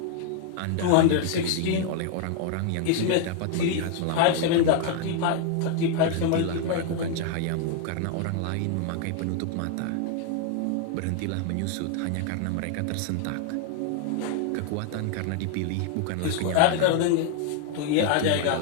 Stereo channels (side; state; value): both; different; correlation 0.00